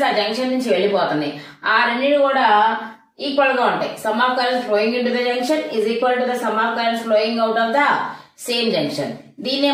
ఆ జంక్షన్ నుంచి వెళ్ళిపోతున్నాయి, ఆ రెండింటి కూడా ఈక్వల్ గా ఉంటాయి. Some of currents flowing into the junction is equal to the sum of currents flowing out of the same junction. దీన్నే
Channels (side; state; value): both; identical; correlation 1.00